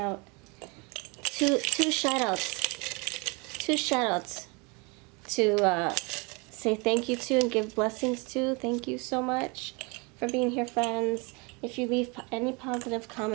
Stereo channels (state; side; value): quieter; left; 29.7 dB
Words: Two shout outs to say thank you to and give blessings to. Thank you so much for being here, friends. If you leave any positive